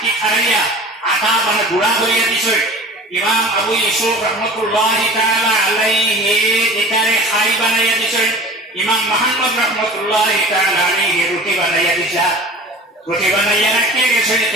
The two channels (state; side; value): normal; both; correlation 0.40